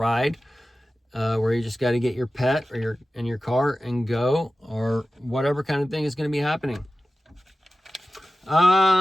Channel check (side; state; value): both; normal; correlation 0.95